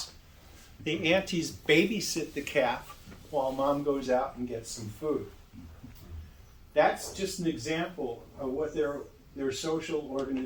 The aunties babysit the calf while mom goes out and gets some food. That's just an example of what their social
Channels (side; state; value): both; identical; correlation 1.00